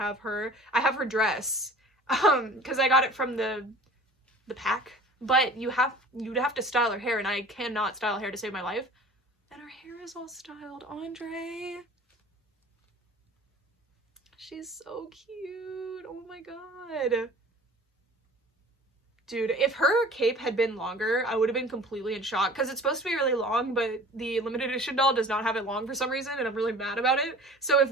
her. I have her dress because I got it from the pack, but you'd have to style her hair, and I cannot style hair to save my life. And her hair is all styled. Andre, she's so cute. Oh my god. Dude, if her cape had been longer, I would have been completely in shock, because it's supposed to be really long, but the limited edition doll does not have it long for some reason, and I'm really mad about it. So if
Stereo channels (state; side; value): normal; both; correlation 0.44